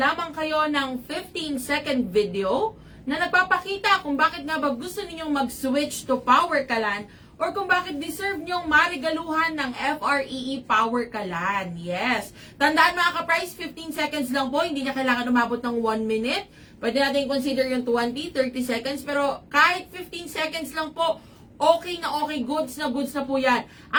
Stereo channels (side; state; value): both; identical; correlation 1.00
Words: kayo ng 15-second video na nagpapakita kung bakit nga ba gusto ninyong mag-switch to Power Kalan or kung bakit deserve nyong marigaluhan ng FREE Power Kalan. Yes. Tandaan mga ka-price, 15 seconds lang po. Hindi niya kailangan umabot ng 1 minute. Pwede natin consider yung 20, 30 seconds. Pero kahit 15 seconds lang po, okay na okay, goods na po yan.